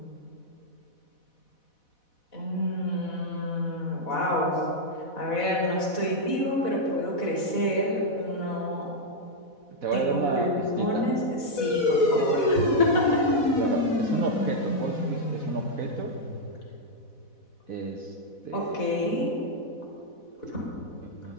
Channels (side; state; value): right; late; 4.1 ms